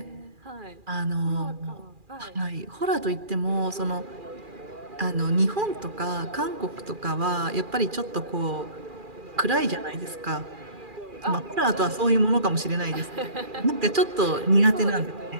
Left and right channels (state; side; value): late; left; 2.4 ms